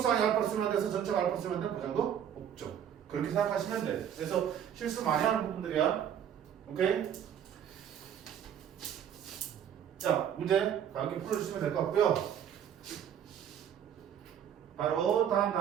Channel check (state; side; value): quieter; left; 9.2 dB